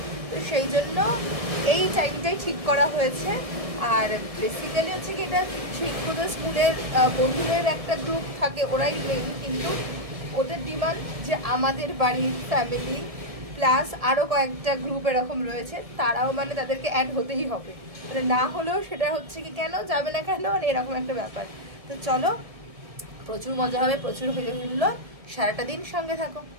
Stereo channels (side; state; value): left; late; 1.7 ms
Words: তো সেই জন্য এই টাইমটাই ঠিক করা হয়েছে। আর বেসিক্যালি হচ্ছে কি এটা শিক্ষকদের স্কুলের বন্ধুদের একটা গ্রুপ থাকে, ওরাই মেইন, কিন্তু ওদের ডিমান্ড যে আমাদের বাড়ির ফ্যামিলি প্লাস আরও কয়েকটা গ্রুপ এরকম রয়েছে, তারাও মানে তাদেরকে অ্যাড হতেই হবে, মানে না হলেও সেটা হচ্ছে কি কেন যাবে না কেন, মানে এরকম একটা ব্যাপার। তো চলো, প্রচুর মজা হবে, প্রচুর হইলো, সারাটা দিন সঙ্গে থাকো।